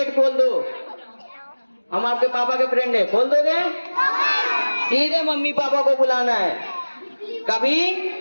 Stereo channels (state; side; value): inverted; both; correlation -1.00